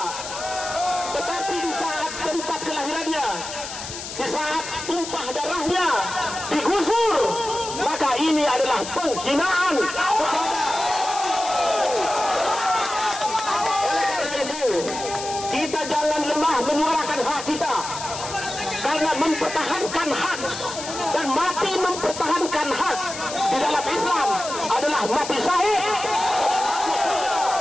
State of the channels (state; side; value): noise; left; hiss, 9 dB below the sound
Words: Tetapi di saat tempat kelahirannya, di saat tumpah darahnya digusur, maka ini adalah penghinaan. Oleh karena itu, kita jangan lemah menyuarakan hak kita, karena mempertahankan hak dan mati mempertahankan hak di dalam Islam adalah mati syahid.